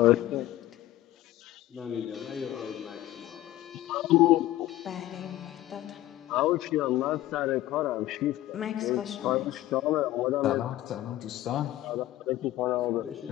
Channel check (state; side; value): quieter; right; 15.0 dB